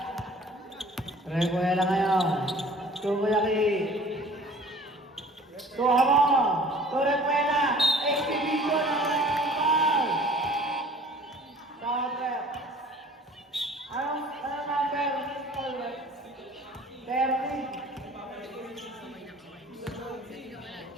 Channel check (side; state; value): both; normal; correlation 0.50